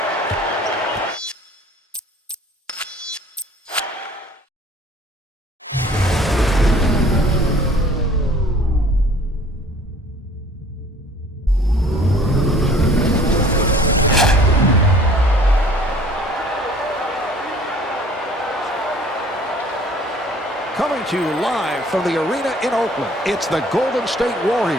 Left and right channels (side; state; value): both; normal; correlation 0.52